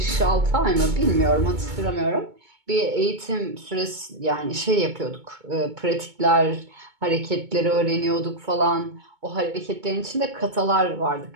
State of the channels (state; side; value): late; left; 2.2 ms